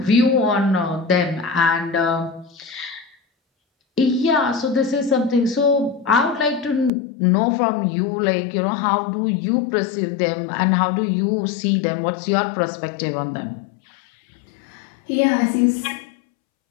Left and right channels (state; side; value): drops out; right; at 6.9 s